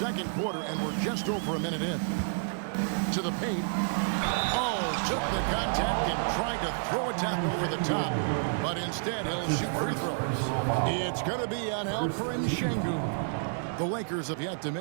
quarter, and we're just over a minute in. To the paint. Oh, took the contact and tried to throw it down over the top. But instead, he'll shoot free throws. It's going to be on Alperen Şengün. The Lakers have yet to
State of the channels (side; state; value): left; silent; digital silence